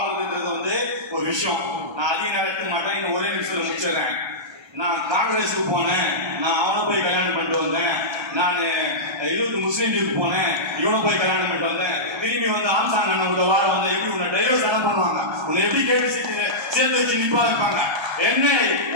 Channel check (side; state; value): left; late; 1.3 ms